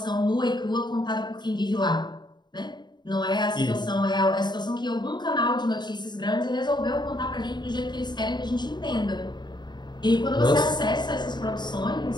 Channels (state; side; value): late; right; 0.21 ms